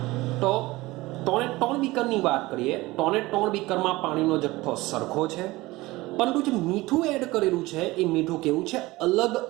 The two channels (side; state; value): left; quieter; 20.0 dB